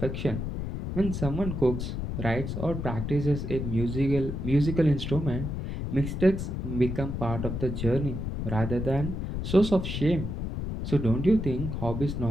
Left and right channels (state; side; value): noise; left; rumble, 4 dB below the sound